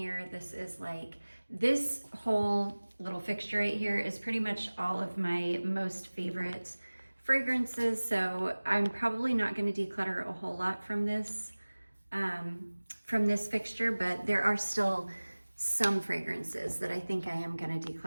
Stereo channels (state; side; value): inverted; both; correlation -1.00